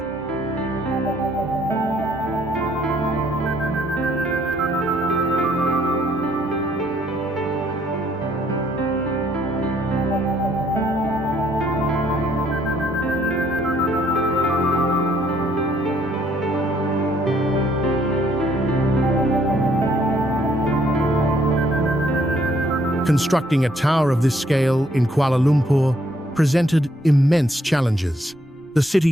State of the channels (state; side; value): noise; right; rumble, 28 dB below the sound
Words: Constructing a tower of this scale in Kuala Lumpur presented immense challenges. The